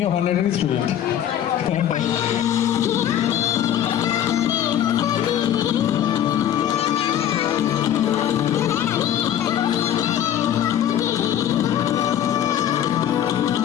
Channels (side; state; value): right; quieter; 10.6 dB